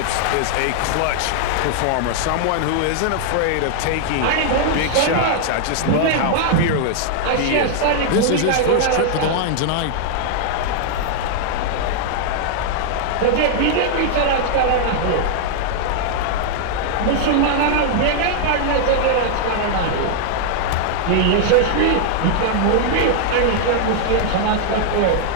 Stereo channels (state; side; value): different; both; correlation 0.00